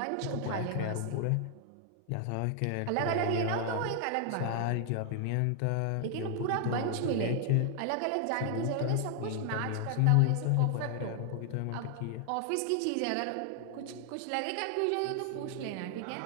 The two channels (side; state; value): both; different; correlation 0.00